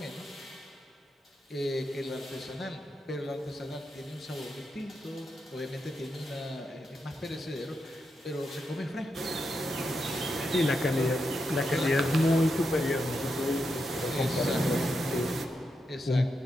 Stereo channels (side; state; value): both; normal; correlation 0.85